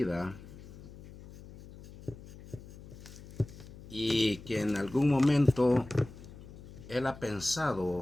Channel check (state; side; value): noise; left; hum, 17 dB below the sound